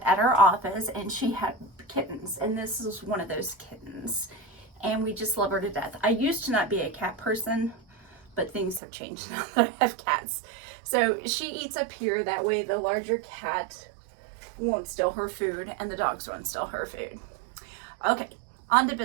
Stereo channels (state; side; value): drops out; left; at 8.8 s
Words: at our office and she had kittens, and this is one of those kittens. And we just love her to death. I used to not be a cat person, but things have changed now that I have cats. So she eats up here, that way the larger cat won't steal her food and the dogs won't steal her food. Okay, on to